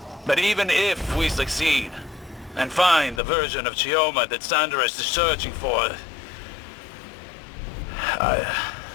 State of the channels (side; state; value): right; drops out; at 3.2 s